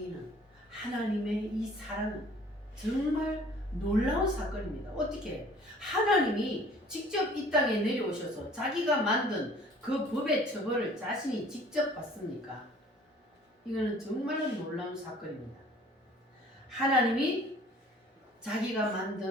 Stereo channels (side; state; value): both; normal; correlation 0.52